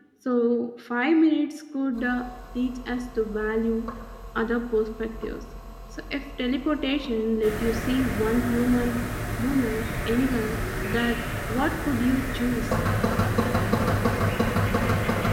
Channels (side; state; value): both; identical; correlation 1.00